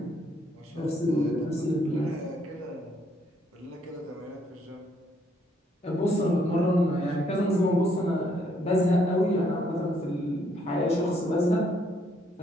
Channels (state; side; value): normal; both; correlation 0.69